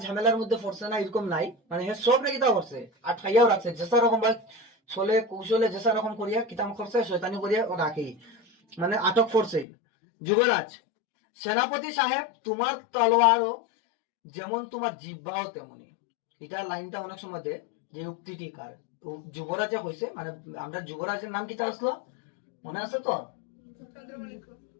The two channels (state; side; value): drops out; right; at 9.7 s